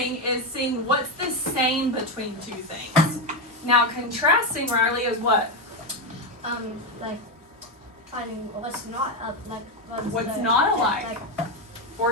is seeing what's the same between two things. Now contrasting, Riley, is what? Like finding what's not What's not alike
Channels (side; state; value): both; normal; correlation 0.10